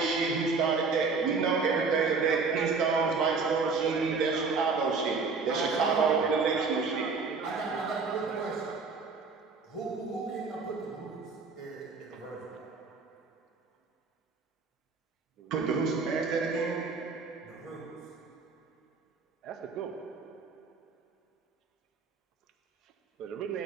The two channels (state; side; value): quieter; left; 4.6 dB